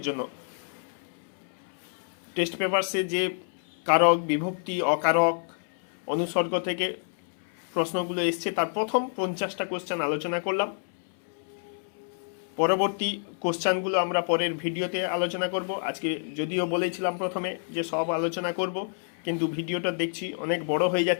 জন্য টেস্ট পেপারসে যে কারক, বিভক্তি, অকারক, অনুসর্গ থেকে প্রশ্নগুলো এসছে তার প্রথম 50টা কোশ্চেন আলোচনা করলাম। পরবর্তী কোশ্চেনগুলো আমরা পরের ভিডিওতে আলোচনা করব। আজকে যদিও বলেছিলাম প্রথমে যে সব আলোচনা করব, কিন্তু ভিডিওটা দেখছি অনেক বড় হয়ে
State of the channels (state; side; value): silent; right; 59 dB below the other